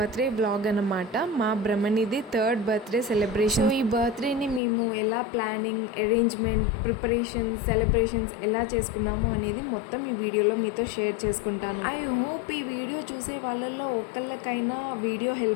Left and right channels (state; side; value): drops out; right; at 4.6 s